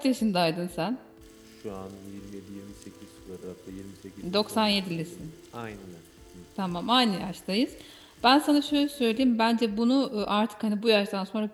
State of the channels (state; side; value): identical; both; correlation 1.00